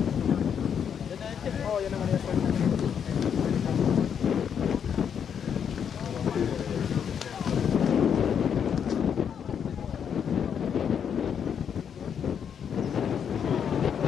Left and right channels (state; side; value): quieter; right; 7.8 dB